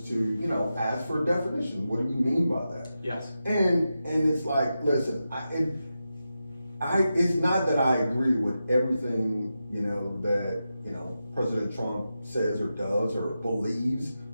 to, you know, ask for a definition. What do you mean by that? Yes. And it's like, listen, it's not that I agree with everything, you know, that, you know, President Trump says or does or believes,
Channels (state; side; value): inverted; both; correlation -0.90